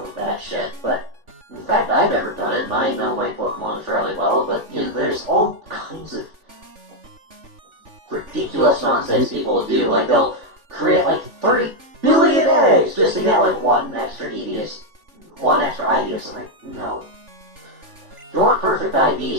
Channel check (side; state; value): left; late; 3.4 ms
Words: that shit, but in fact, I've never done it, and I know my Pokemon fairly well, but, there's all kinds of ridiculous nonsense people do. Like, they'll create, 30 billion eggs just to get, one extra IV or something. No. If you want perfect